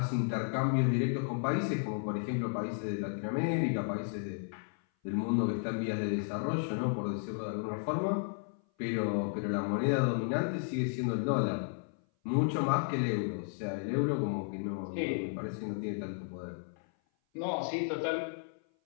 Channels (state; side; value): silent; right; 55 dB below the other